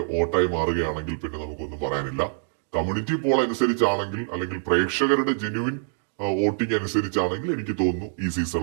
വോട്ടായി മാറുകയാണെങ്കിൽ പിന്നെ നമുക്കൊന്നും പറയാനില്ല. കമ്മ്യൂണിറ്റി പോൾ അനുസരിച്ചാണെങ്കിൽ അല്ലെങ്കിൽ പ്രേക്ഷകരുടെ ജെന്യുവിൻ വോട്ടിംഗ് അനുസരിച്ചാണെങ്കിൽ എനിക്ക് തോന്നുന്നു ഈ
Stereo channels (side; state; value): left; silent; digital silence